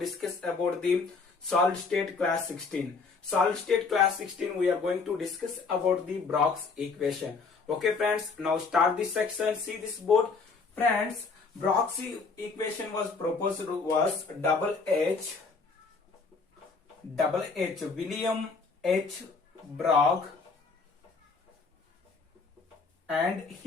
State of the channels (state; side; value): quieter; right; 4.6 dB